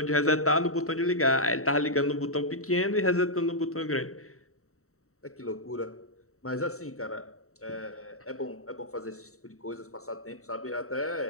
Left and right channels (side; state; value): right; late; 0.64 ms